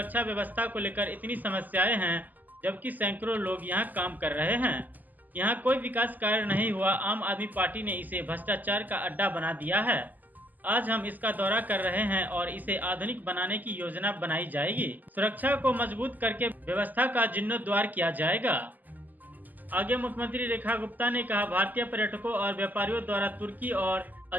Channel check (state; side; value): late; left; 0.083 ms